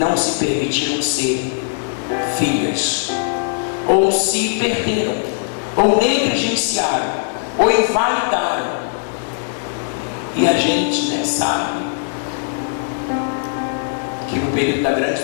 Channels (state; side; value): silent; right; digital silence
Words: se permitiram ser filhas, ou se perderam, ou negligenciaram, ou invalidaram. E a gente, né, sabe que no período da grande